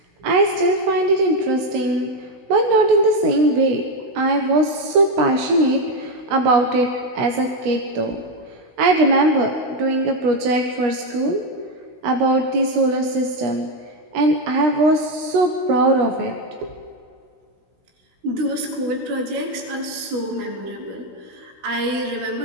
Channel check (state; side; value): late; left; 16 ms